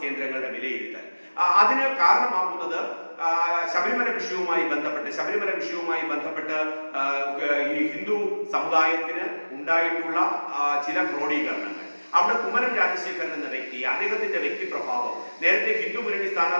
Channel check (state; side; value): inverted; both; correlation -1.00